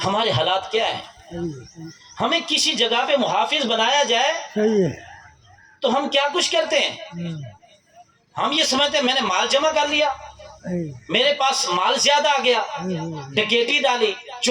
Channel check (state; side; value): identical; both; correlation 1.00